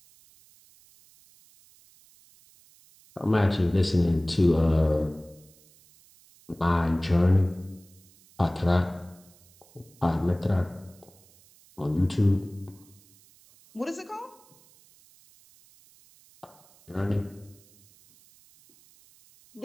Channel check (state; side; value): noise; right; hiss, 28 dB below the sound